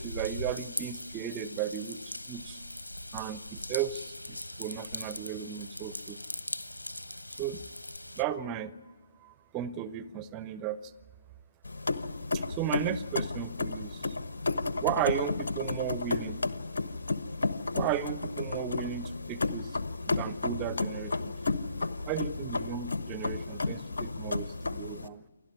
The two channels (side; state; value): both; inverted; correlation -0.52